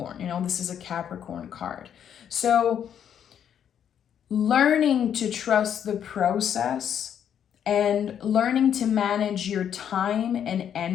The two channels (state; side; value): quieter; right; 9.0 dB